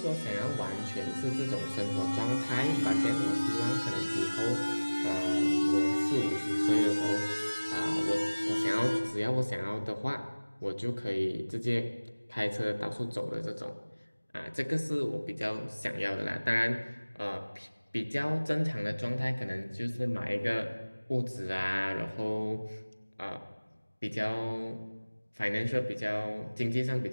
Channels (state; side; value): inverted; both; correlation -1.00